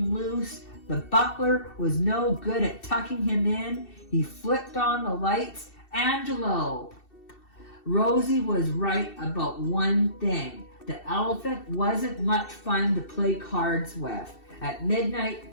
loose. The butler was no good at tucking him in. He flipped on the lights. Angelo. Rosie was right about one thing. The elephant wasn't much fun to play cards with. At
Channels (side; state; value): right; late; 2.7 ms